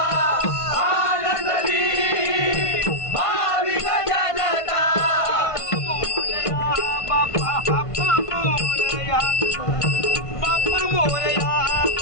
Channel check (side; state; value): right; late; 1.5 ms